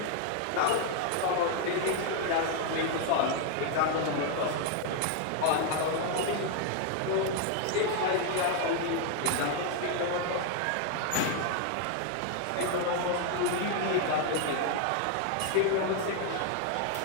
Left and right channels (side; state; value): both; different; correlation 0.00